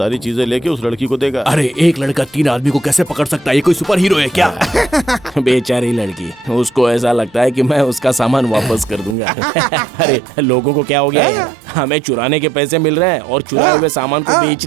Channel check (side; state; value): left; drops out; at 9.2 s